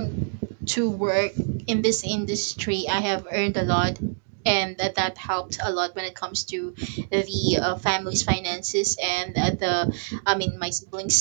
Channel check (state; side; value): silent; left; digital silence